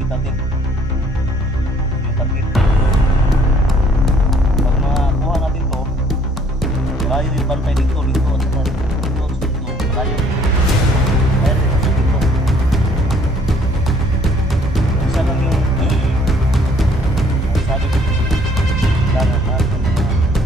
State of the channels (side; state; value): both; normal; correlation 0.61